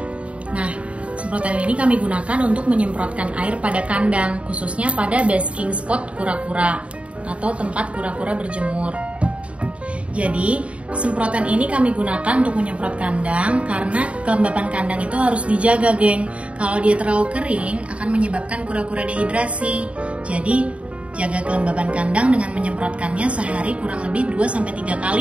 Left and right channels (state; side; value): late; left; 0.063 ms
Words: Nah, semprotan ini kami gunakan untuk menyemprotkan air pada kandang, khususnya pada basking spot kura-kura atau tempat kura-kura berjemur. Jadi, semprotan ini kami gunakan untuk menyemprot kandang karena kelembapan kandang itu harus dijaga, geng. Kalau dia terlalu kering, akan menyebabkan kura-kura dehidrasi. Jadi, jaga kelembapan kandang dengan menyemprotkannya sehari kurang lebih 2-3